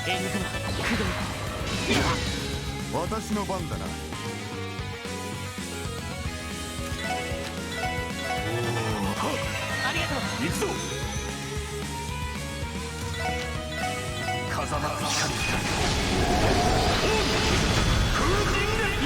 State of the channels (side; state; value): both; identical; correlation 1.00